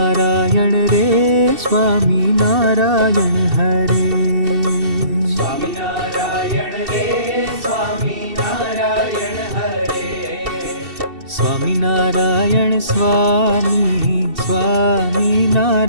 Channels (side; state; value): left; late; 2.7 ms